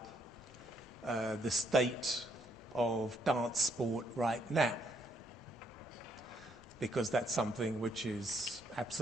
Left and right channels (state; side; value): normal; both; correlation 0.72